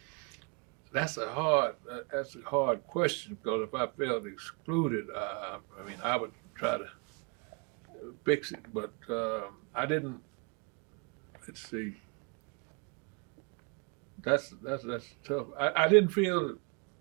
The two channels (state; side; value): quieter; left; 34.6 dB